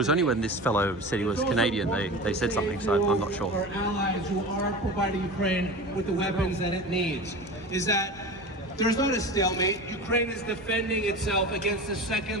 only when this fellow said he was Canadian they said something, so I'm not sure. Our allies who are providing Ukraine with the weapons that it needs is that there's not a stalemate. Ukraine is defending itself against the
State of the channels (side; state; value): both; normal; correlation 0.31